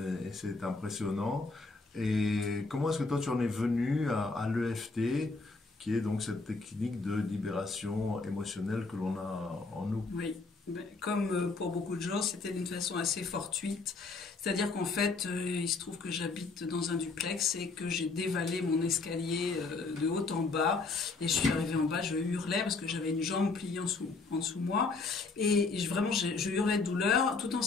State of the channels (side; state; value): right; quieter; 3.9 dB